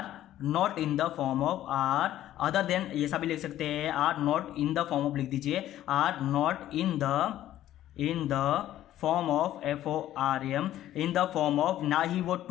not in the form of are other than, ये सब भी लिख सकते हैं, are not in the form of लिख दीजिए, are not in the form of FORM, in the form of, ना ही वो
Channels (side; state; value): right; quieter; 13.0 dB